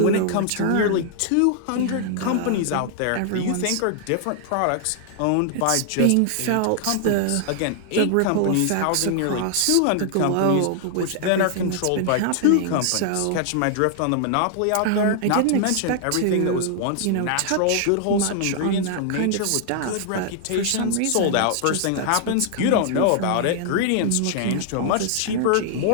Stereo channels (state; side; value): different; both; correlation -0.01